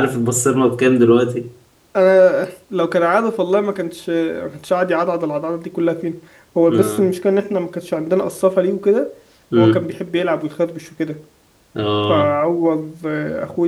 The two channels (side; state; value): both; identical; correlation 1.00